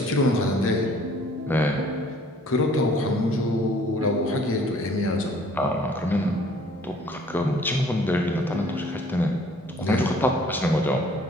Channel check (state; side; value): normal; both; correlation 0.56